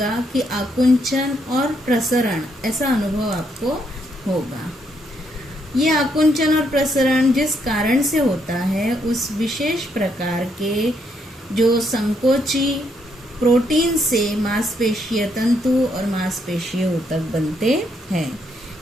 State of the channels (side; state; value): both; normal; correlation 0.75